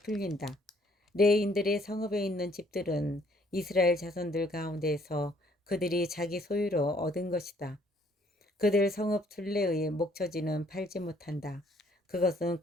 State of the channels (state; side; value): normal; both; correlation 0.64